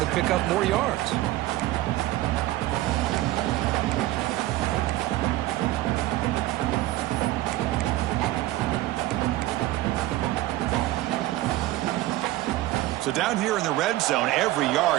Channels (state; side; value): quieter; left; 16.4 dB